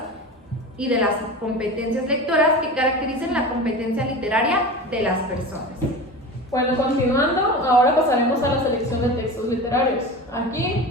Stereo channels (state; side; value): normal; both; correlation 0.31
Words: y de las competencias lectoras que caracterizan la competencia literaria de las personas. Bueno, continuando, ahora pasaremos a la selección de textos literarios. Aquí,